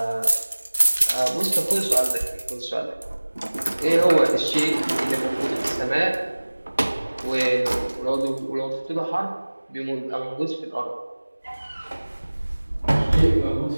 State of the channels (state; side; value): inverted; both; correlation -1.00